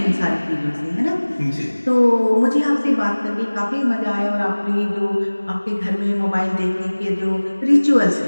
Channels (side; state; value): both; inverted; correlation -1.00